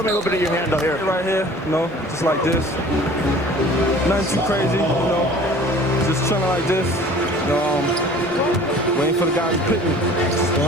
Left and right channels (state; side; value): normal; both; correlation 0.47